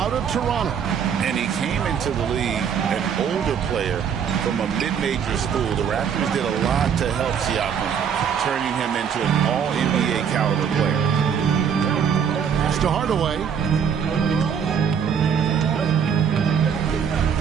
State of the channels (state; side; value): quieter; left; 7.5 dB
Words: of Toronto. And he came into the league an older player from a mid-major school. The Raptors did a lot to help Siakam, turning him into an all-NBA caliber player. Pass to Hardaway.